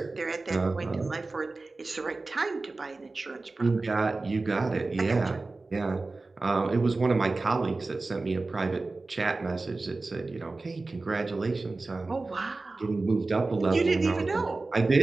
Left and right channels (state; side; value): quieter; left; 3.5 dB